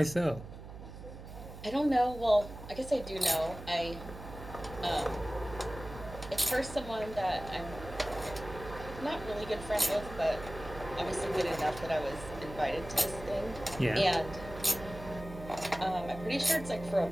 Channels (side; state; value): right; noise; hum, 13 dB below the sound